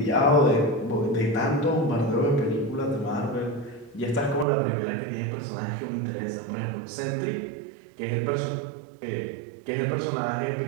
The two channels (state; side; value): drops out; left; at 4.5 s